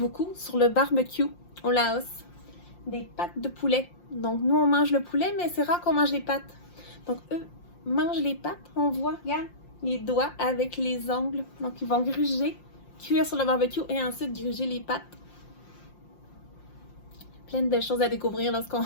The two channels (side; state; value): right; late; 5.7 ms